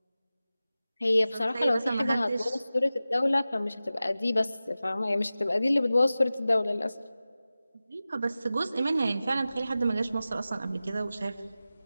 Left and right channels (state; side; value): inverted; both; correlation -0.95